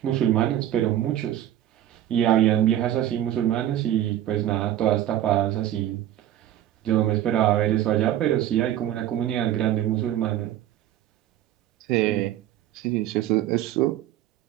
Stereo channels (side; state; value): left; quieter; 12.2 dB